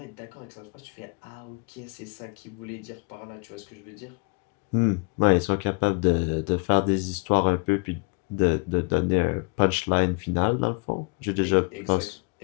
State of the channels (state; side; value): quieter; right; 32.6 dB